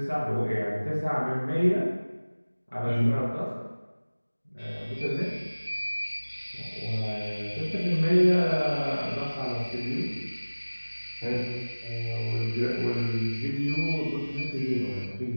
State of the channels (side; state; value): both; inverted; correlation -1.00